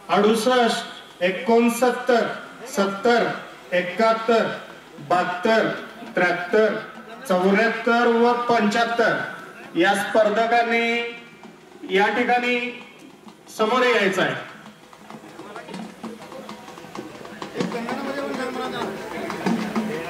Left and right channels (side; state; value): both; identical; correlation 1.00